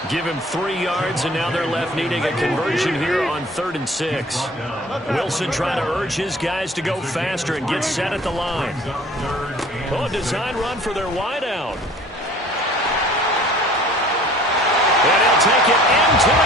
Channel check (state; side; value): normal; both; correlation 0.50